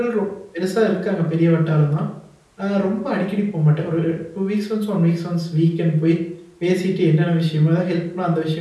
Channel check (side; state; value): both; identical; correlation 1.00